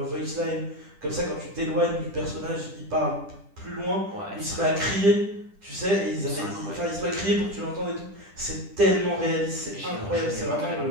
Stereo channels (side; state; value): left; late; 10 ms